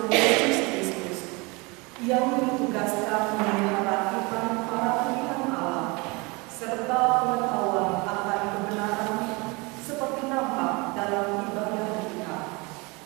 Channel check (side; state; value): left; quieter; 27.0 dB